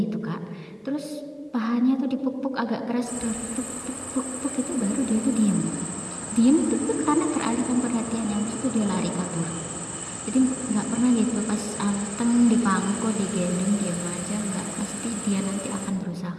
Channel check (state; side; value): identical; both; correlation 1.00